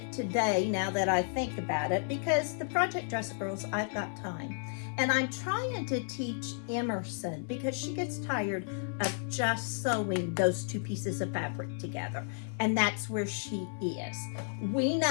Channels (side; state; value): right; silent; 56 dB below the other